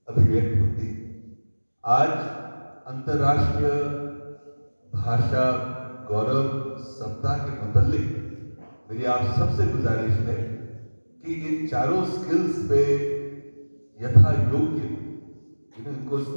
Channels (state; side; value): inverted; both; correlation -1.00